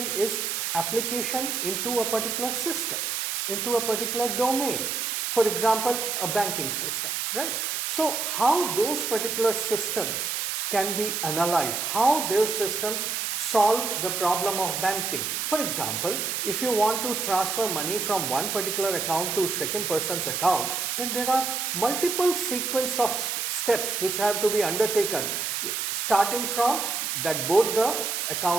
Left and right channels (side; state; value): right; noise; hiss, 1 dB below the sound